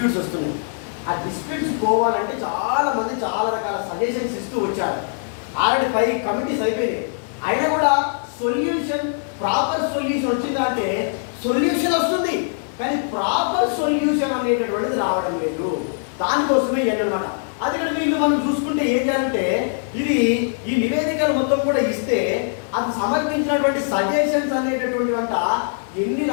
వస్తున్నాయి. ఆ డిస్ప్యూట్స్ పోవాలంటే చాలా మంది చాలా రకాల సజెషన్స్ ఇస్తూ వచ్చారు. ఆల్రెడీ 5 కమిటీస్ అయిపోయినాయి. అయినా కూడా సొల్యూషన్, ప్రాపర్ సొల్యూషన్ వచ్చిందంటే సొల్యూషన్ వస్తుంది, కానీ ప్రాపర్ సొల్యూషన్ అనేటటువంటిది రావడం లేదు. దానికోసమే అన్నమాట. అది కూడా వీళ్ళు మనం చూసుకుంటే ఏం చేయాలంటే, ఇది ఈ నివేదికలు మొత్తం కూడా ఇస్తే అది సమర్పించినటువంటి సజెషన్స్ అనేటటువంటి వంట ఎన్ని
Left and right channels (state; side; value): silent; right; digital silence